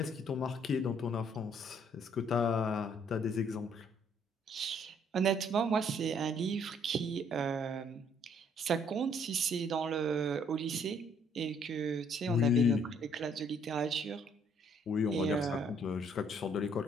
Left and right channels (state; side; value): normal; both; correlation 0.65